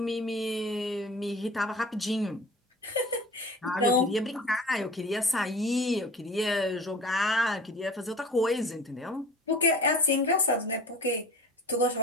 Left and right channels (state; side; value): normal; both; correlation 0.40